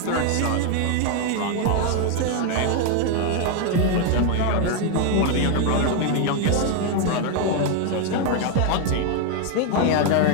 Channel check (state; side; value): different; both; correlation 0.01